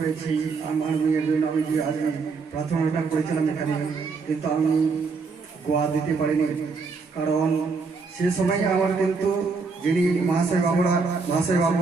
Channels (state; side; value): quieter; left; 4.6 dB